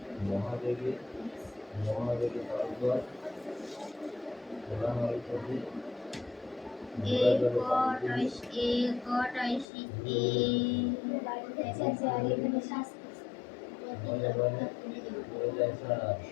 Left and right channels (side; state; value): right; drops out; at 9.7 s